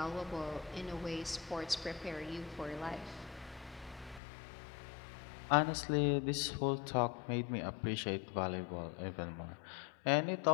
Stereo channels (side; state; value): right; drops out; at 4.2 s